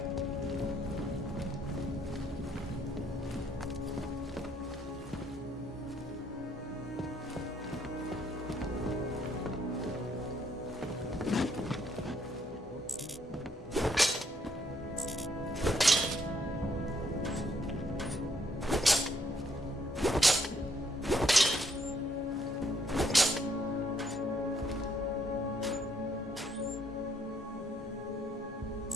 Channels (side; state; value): both; normal; correlation 0.70